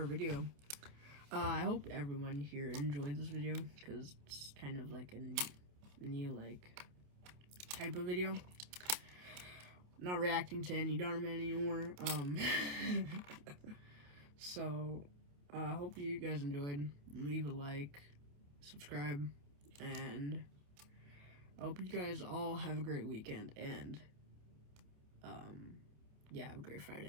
video. I hope everyone here enjoyed this video, because it's kind of like a new, like, type of video. Not reacting to any Enderman anymore. So, I hope you guys enjoyed. Leave a like, subscribe, and I hope you guys all have a great weekend, and, yeah, have a great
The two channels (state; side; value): late; left; 28 ms